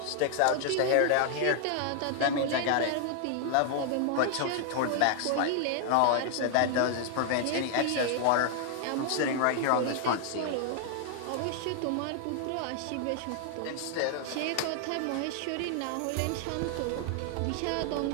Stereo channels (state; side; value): different; both; correlation 0.00